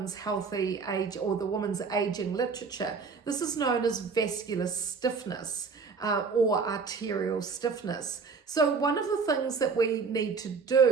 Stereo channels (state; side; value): quieter; left; 5.0 dB